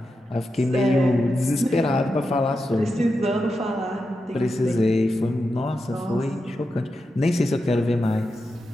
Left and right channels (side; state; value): both; normal; correlation 0.88